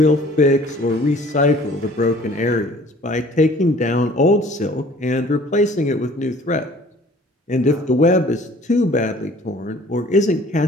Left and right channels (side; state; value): both; normal; correlation 0.52